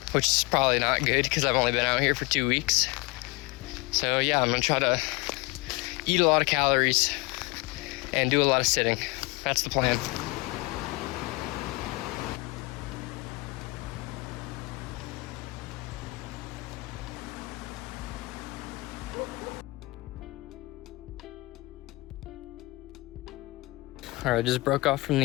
which is probably not good because I've only been out here for 2 weeks. So yeah, I'm gonna try to eat a lot of calories and do a lot of sitting. That's the plan. All right, I just broke off from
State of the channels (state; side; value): quieter; right; 23.8 dB